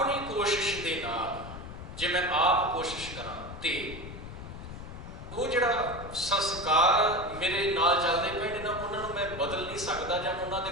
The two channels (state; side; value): noise; left; rumble, 11 dB below the sound